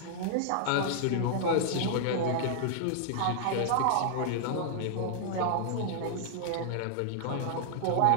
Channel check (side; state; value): both; different; correlation -0.01